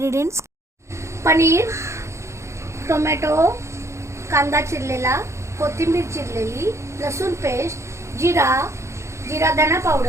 पनीर, टोमॅटो, कांदा चिरलेला, कोथिंबीर चिरलेली, लसूण पेस्ट, जीरा धना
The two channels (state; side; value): late; left; 0.14 ms